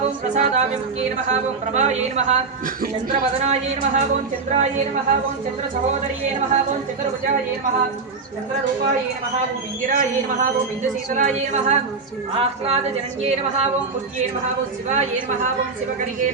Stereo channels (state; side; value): quieter; left; 4.4 dB